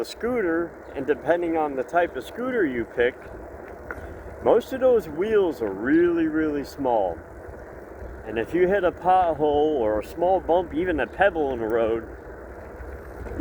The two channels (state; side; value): identical; both; correlation 1.00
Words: scooter, and depending on the type of scooter you pick, most of those wheels are really small, and if you hit a pothole or a small bump, even a pebble in the road,